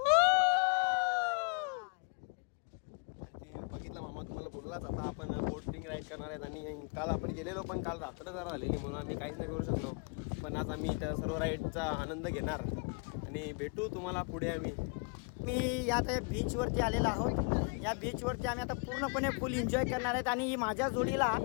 बघितलं मामा तुम्हाला बोललाच. आता आपण बोटिंग राईड करणार आहेत. आणि काल आपण गेलेलो पण काल रात्र जरा झालेली म्हणून आम्ही काहीच नाही करू शकलो. पण आज आम्ही त्या सर्व राईडचा आनंद घेणार आणि भेटू तुम्हाला पुढे. मी यात बीचवरती आलेलो आहोत. या बीचवरती आम्ही आता पूर्णपणे फुल एन्जॉय करणार आहेत. आणि ही माझ्या जोडीला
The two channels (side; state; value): right; quieter; 34.9 dB